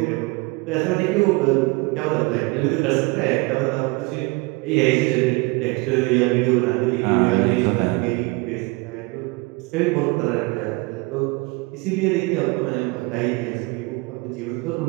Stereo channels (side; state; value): left; quieter; 25.7 dB